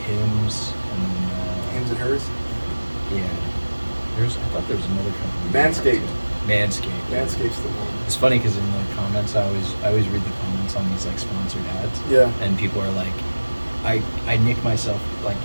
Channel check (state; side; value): inverted; both; correlation -1.00